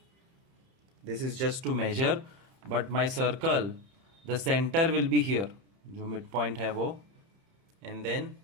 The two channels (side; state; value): left; late; 31 ms